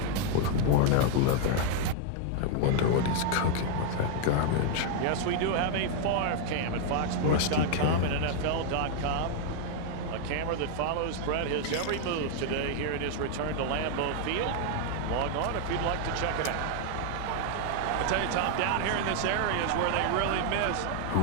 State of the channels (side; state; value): both; different; correlation 0.00